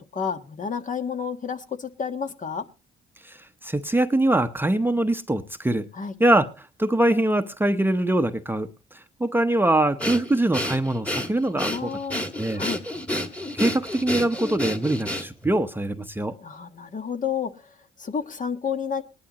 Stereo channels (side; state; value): both; normal; correlation 0.78